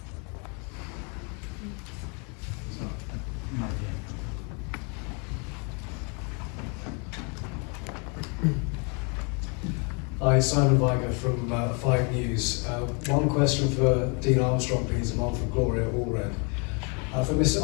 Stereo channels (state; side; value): quieter; right; 34.9 dB